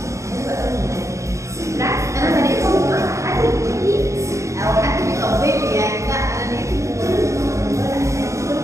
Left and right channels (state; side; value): late; left; 0.15 ms